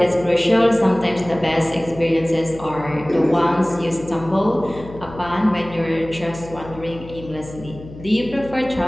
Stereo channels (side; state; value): left; noise; hum, 16 dB below the sound